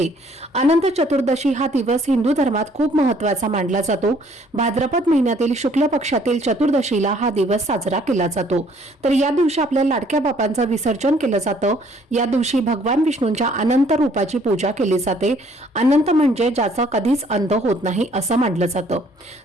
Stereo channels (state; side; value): normal; both; correlation 0.61